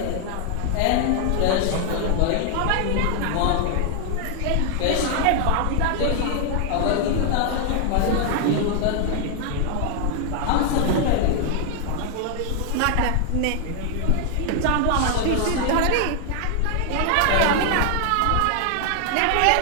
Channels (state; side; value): different; both; correlation 0.00